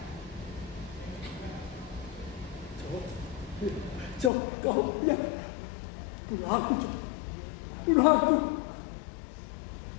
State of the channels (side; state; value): right; drops out; at 4.3 s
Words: Jo, kau, ya, bunuh aku, Jo. Bunuh aku.